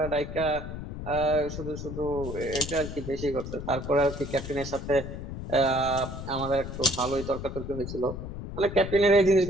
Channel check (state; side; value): noise; left; rumble, 8 dB below the sound